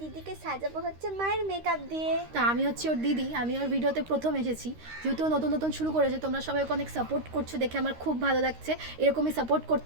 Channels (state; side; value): late; left; 13 ms